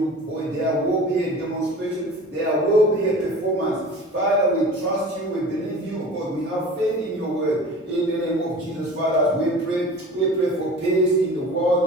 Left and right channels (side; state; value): both; normal; correlation 0.40